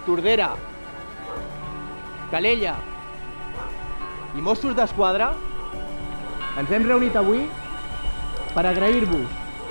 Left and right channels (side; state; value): both; inverted; correlation -1.00